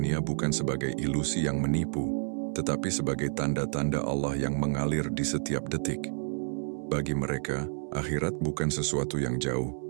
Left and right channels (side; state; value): left; silent; 58 dB below the other